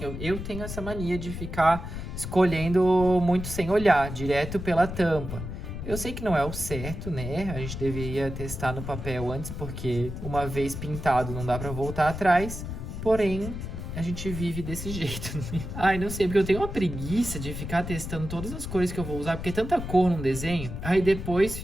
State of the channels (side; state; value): left; noise; rumble, 7 dB below the sound